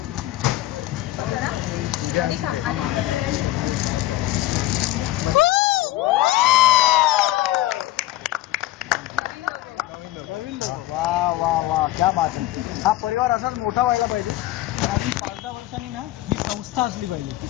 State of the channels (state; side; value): quieter; right; 15.9 dB